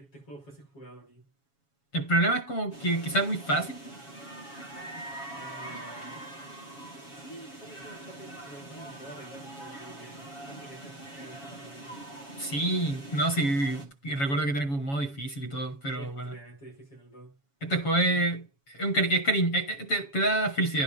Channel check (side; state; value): right; late; 7.2 ms